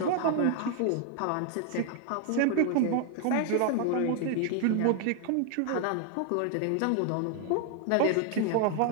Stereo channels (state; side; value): different; both; correlation 0.00